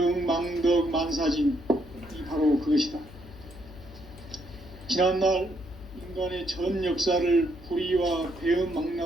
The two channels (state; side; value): noise; left; hum, 18 dB below the sound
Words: 망덕 만사진, 이 바로 그것이다. 지난날 인간의 전 역사를 불의와 배움